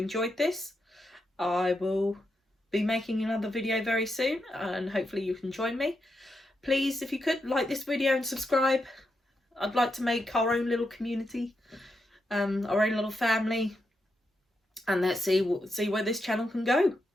this. I will be making another video very soon, and hopefully you can join me. Please, if you could, like this video and subscribe. I'd like to make our own little community, our own little family, and let's see where this channel can go.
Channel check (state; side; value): normal; both; correlation 0.84